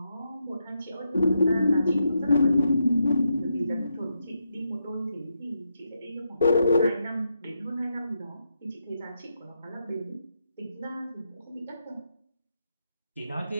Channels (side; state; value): both; inverted; correlation -0.83